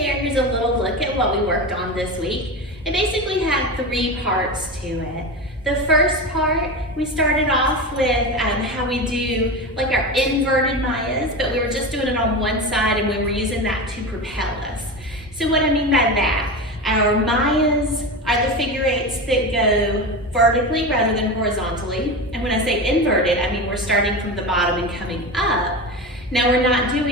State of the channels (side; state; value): both; normal; correlation 0.23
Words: here's a little look at what we worked on this week. It basically had 3 parts to it. The first part, we started off with how we do like our inverted Mayas, but we were just doing it on one side and we were using that to propel us. So what I mean by that, our Mayas are the figure eights that go vertically rather than horizontally. And when I say inverted, I mean we're starting from the bottom and coming up. Now we're not